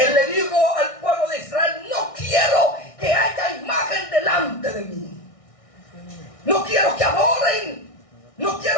le dijo al pueblo de Israel, no quiero que haya imagen delante de mí. No quiero que adoren. No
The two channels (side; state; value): right; late; 1.6 ms